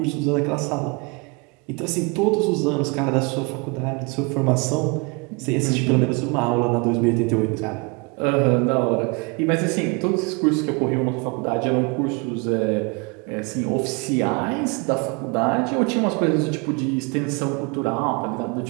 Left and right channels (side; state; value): left; quieter; 30.0 dB